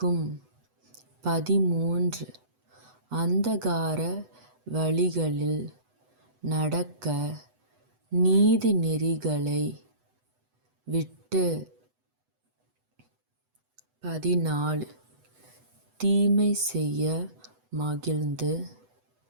13. அந்தகார வழிகளில் நடக்க நீதி நெறிகளை விட்டு. 14. தீமை செய்ய மகிழ்ந்து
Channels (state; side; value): late; left; 8.0 ms